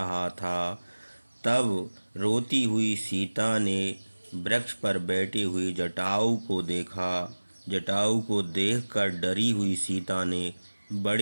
था, तब रोती हुई सीता ने वृक्ष पर बैठे हुए जटायु को देखा। जटायु को देखकर डरी हुई सीता ने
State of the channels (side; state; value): both; inverted; correlation -1.00